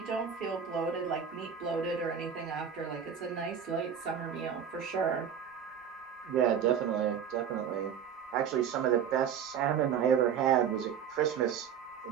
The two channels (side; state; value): left; quieter; 8.0 dB